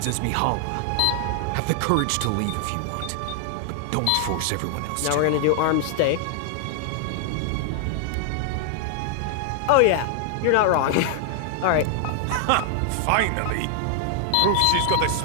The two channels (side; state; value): both; different; correlation 0.00